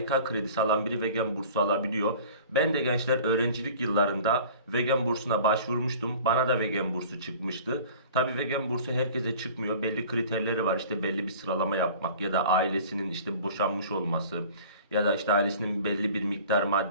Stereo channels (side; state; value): both; inverted; correlation -0.44